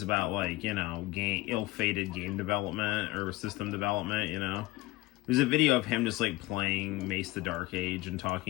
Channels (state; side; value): quieter; right; 19.7 dB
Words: about ill-fated game development or system development, There's a video of him just playing Mace the Dark Age and